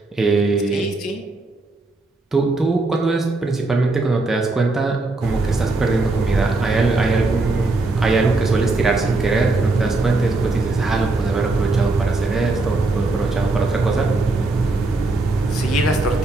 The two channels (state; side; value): quieter; left; 3.2 dB